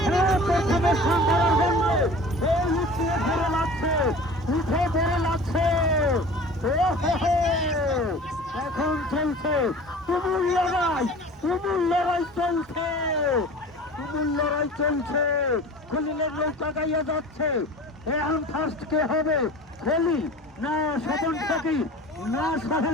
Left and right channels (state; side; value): normal; both; correlation 0.40